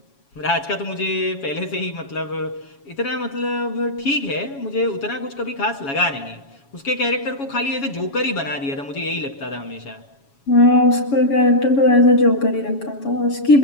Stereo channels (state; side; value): late; right; 7.2 ms